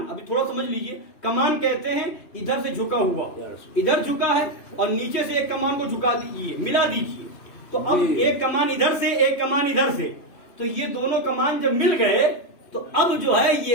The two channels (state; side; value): late; right; 2.9 ms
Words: ابھی تھوڑا سمجھ لیجیے. کمان کہتے ہیں ادھر سے جھکا ہوا، ادھر جھکا ہے اور نیچے سے ایک کمان کو جھکا دیجیے، ملا دیجیے. تو اب ایک کمان ادھر سے، ایک کمان ادھر سے، تو یہ دونوں کمان جب مل گئے تو اب جو ہے